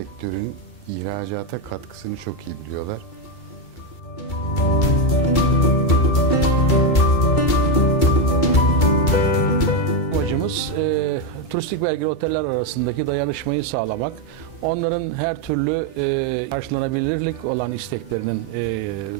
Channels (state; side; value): late; right; 2.2 ms